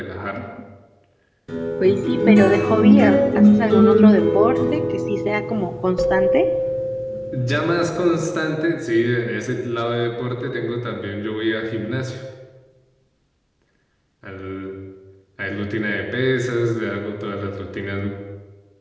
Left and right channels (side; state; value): both; identical; correlation 1.00